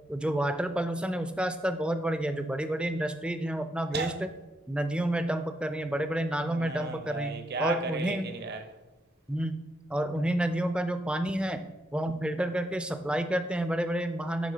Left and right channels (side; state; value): both; normal; correlation 0.80